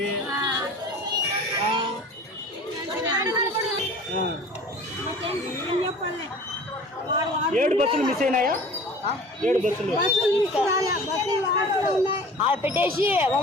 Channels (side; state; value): both; normal; correlation 0.43